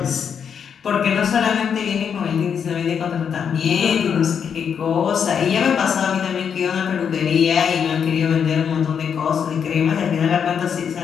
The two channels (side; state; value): right; quieter; 7.4 dB